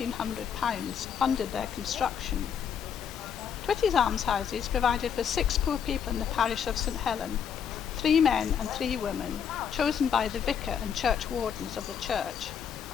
funded their construction. Twitty's Almshouses provided for 6 poor people in the parish of St Helen, 3 men and 3 women, chosen by the vicar and church wardens of the church.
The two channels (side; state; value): right; quieter; 7.7 dB